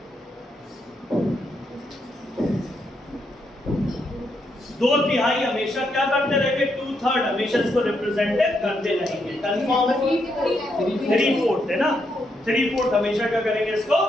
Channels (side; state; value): both; normal; correlation 0.79